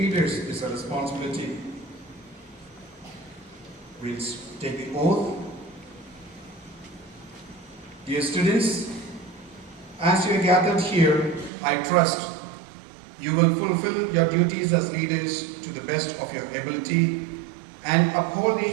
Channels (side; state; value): left; drops out; at 11.5 s